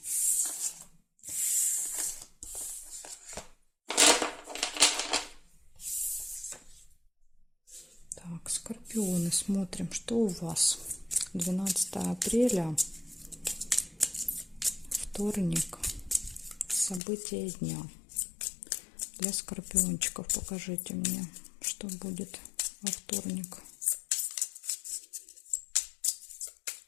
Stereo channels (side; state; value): right; drops out; at 17.0 s